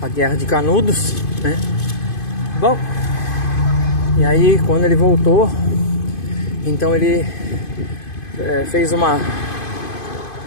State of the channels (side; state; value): right; late; 2.5 ms